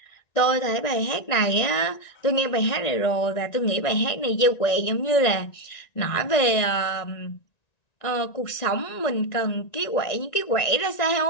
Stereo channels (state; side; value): late; right; 1.9 ms